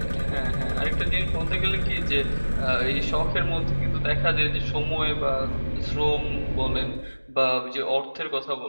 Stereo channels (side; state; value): both; inverted; correlation -1.00